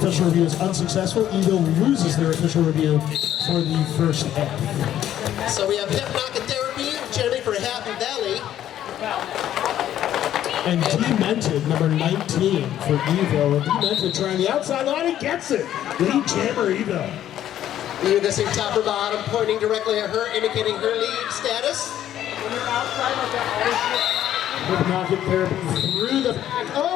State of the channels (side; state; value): right; quieter; 11.6 dB